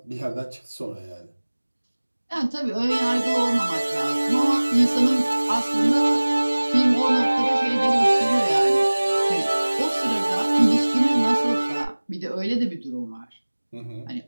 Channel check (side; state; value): both; inverted; correlation -1.00